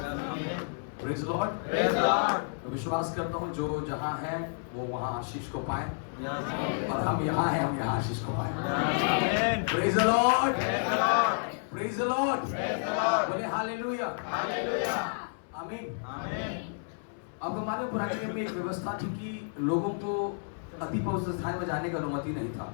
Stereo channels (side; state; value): right; silent; 58 dB below the other